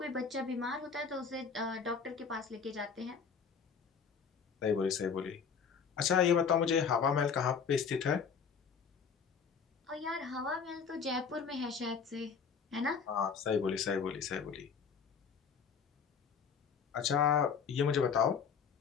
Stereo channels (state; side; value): quieter; right; 6.2 dB